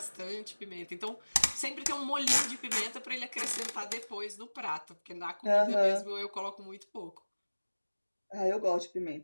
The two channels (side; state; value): both; inverted; correlation -1.00